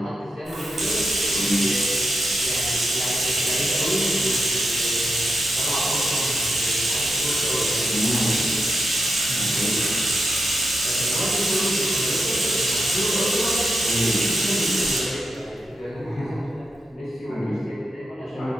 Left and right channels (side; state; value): both; normal; correlation 0.86